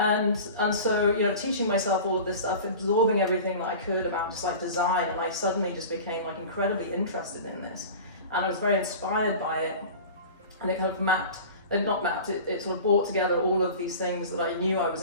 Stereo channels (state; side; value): inverted; both; correlation -0.37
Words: so, teaching myself all of this stuff, absorbing everything that I could about just like design, and I suddenly just became like incredibly interested in this. And I was very inspired by it. And it kind of it sort of brought together all of these things that I knew I was